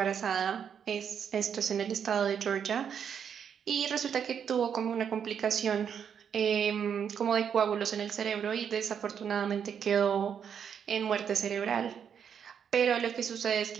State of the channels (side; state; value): left; quieter; 7.8 dB